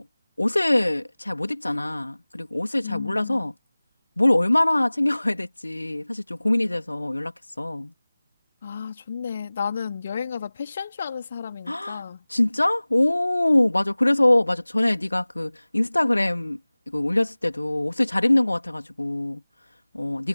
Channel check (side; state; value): both; inverted; correlation -0.99